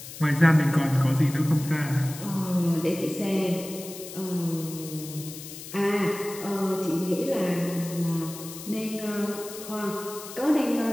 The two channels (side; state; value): left; noise; hiss, 13 dB below the sound